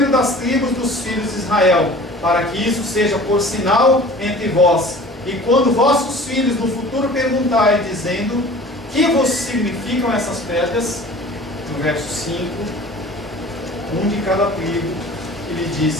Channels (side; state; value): both; normal; correlation 0.44